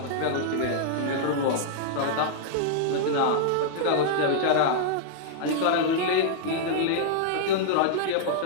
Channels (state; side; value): different; both; correlation -0.01